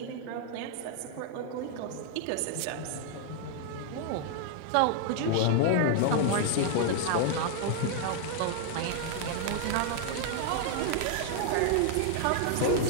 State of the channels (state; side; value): different; both; correlation 0.00